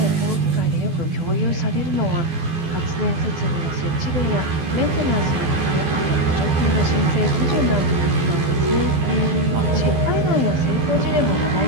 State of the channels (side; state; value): left; late; 12 ms